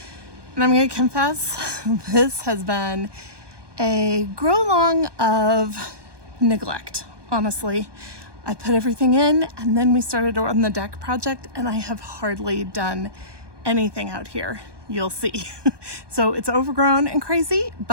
And I'm gonna confess, this has been a grow along of neglect, honestly. I put everything in and then we started on the deck project and I have hardly done anything out here. You'll see. So it's overgrown and crazy,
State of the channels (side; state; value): left; late; 1.2 ms